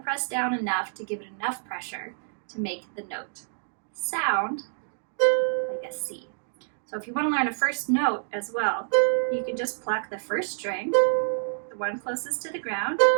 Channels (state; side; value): silent; left; digital silence